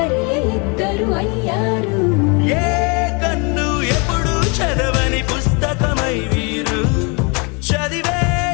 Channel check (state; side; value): quieter; right; 32.3 dB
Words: ఇద్దరు అయ్యారు ఏ కన్ను ఎప్పుడు చదవని పుస్తకమై వీరు